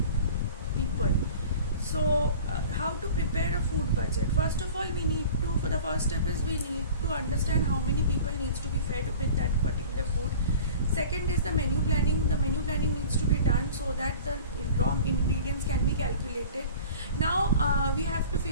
people. So how to prepare a food budget? First of all, for the first step is we need to understand how many people needs to be fed with that particular food. Second is the menu planning. The menu planning needs to be done so that the raw ingredients can be calculated. Now we have to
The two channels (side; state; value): both; inverted; correlation -0.41